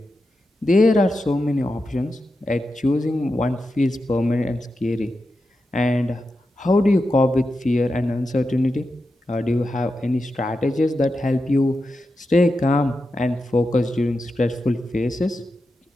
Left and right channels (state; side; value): normal; both; correlation 0.89